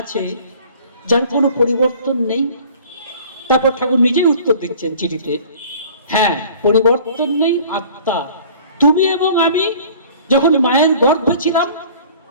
যার কোনো পরিবর্তন নেই? তারপর ঠাকুর নিজেই উত্তর দিচ্ছেন চিঠিতে, হ্যাঁ পরিবর্তন নেই আত্মা। তুমি এবং আমি যখন মায়ের গর্ভে ছিলাম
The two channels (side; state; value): both; inverted; correlation -0.49